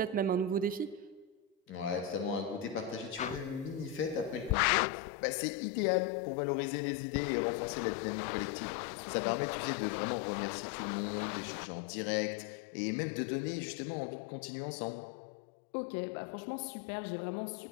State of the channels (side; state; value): right; drops out; at 4.5 s